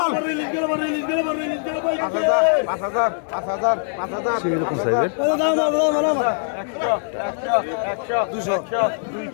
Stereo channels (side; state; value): right; silent; 62 dB below the other